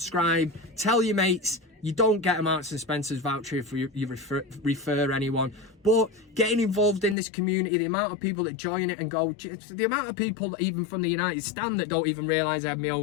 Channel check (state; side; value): drops out; right; at 7.2 s